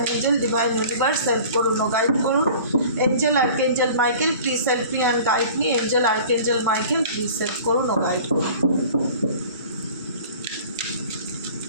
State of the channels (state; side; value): inverted; both; correlation -0.44